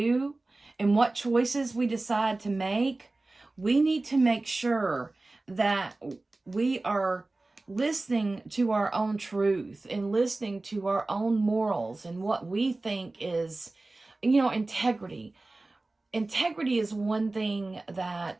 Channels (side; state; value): left; quieter; 3.1 dB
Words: and what choices we decide to make, we need to make sure that we are listening to our own truth and listening to our own morals and what we think is, integrity. Integrity is one thing